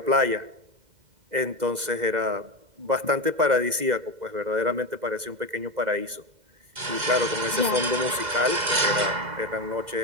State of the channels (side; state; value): left; late; 2.0 ms